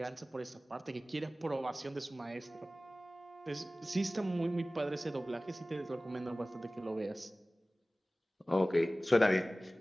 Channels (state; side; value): normal; both; correlation 0.97